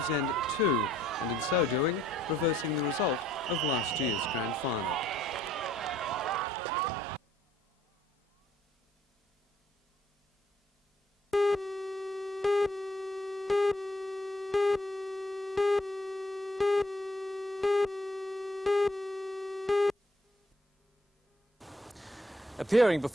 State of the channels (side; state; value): both; normal; correlation 0.65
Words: End 2, and in so doing, reversing the result of last year's grand final. Appearing